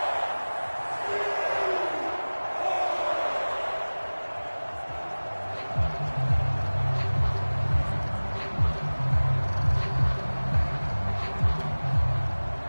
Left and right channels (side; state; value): both; inverted; correlation -1.00